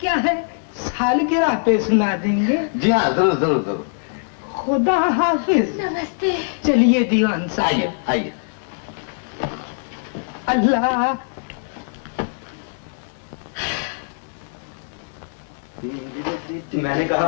क्या है, सालगिरह पे सुना देंगे। जी हाँ, जरूर। खुदा हाफिज। नमस्ते। चलिए दीवान साहब। आइए। अल्लाह। मैंने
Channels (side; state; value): right; silent; 64 dB below the other